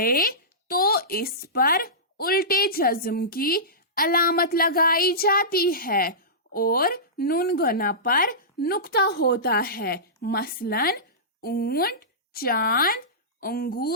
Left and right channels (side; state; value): both; normal; correlation -0.19